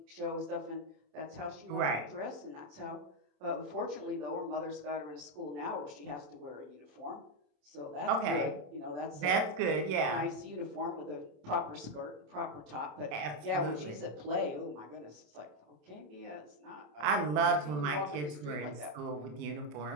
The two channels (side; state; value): left; late; 27 ms